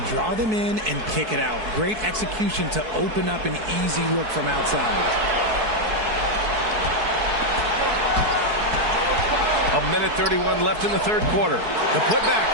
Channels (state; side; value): late; left; 4.6 ms